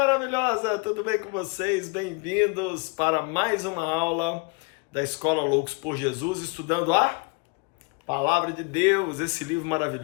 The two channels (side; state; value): right; quieter; 30.6 dB